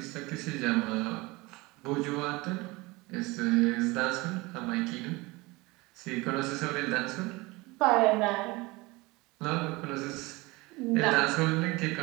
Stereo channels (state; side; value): quieter; left; 23.1 dB